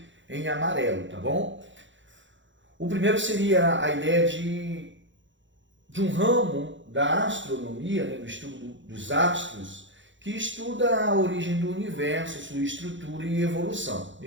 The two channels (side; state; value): left; late; 0.55 ms